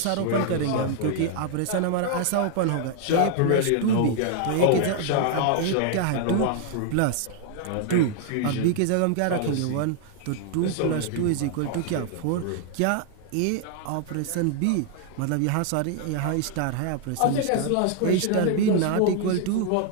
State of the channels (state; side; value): different; both; correlation 0.00